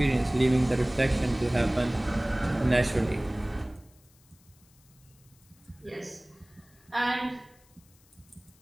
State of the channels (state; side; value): noise; left; hiss, 30 dB below the sound